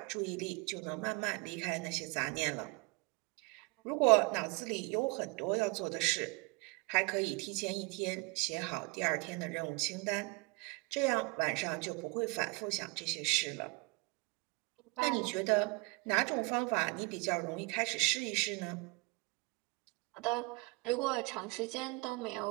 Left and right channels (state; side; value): quieter; left; 28.3 dB